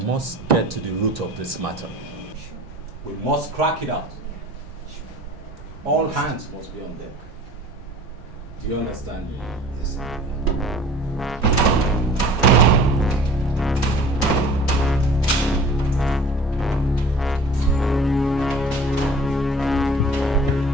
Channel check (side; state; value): both; normal; correlation 0.46